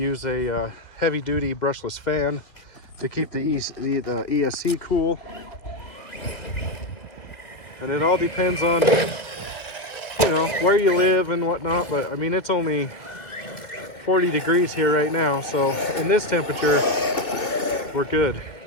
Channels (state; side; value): late; right; 2.3 ms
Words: a heavy-duty brushless fan to keep the ESC cool. And it all depends on, you know, where you live and whatnot. But I mean, it's only 40 degrees here right now. So in this temperature, we're good.